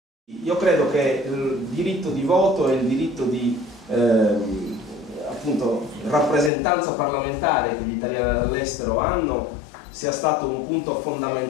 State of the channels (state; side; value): drops out; right; at 6.5 s